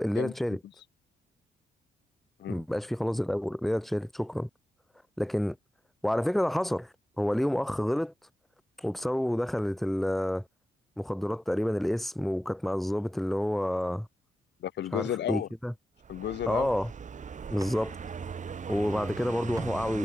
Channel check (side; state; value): both; normal; correlation 0.93